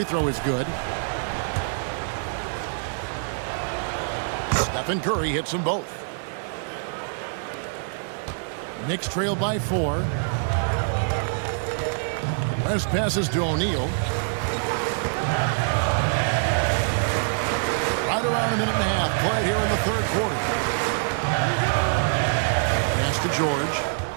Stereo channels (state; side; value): silent; left; 62 dB below the other